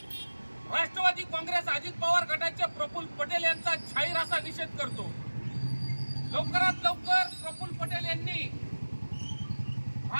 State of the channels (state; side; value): inverted; both; correlation -1.00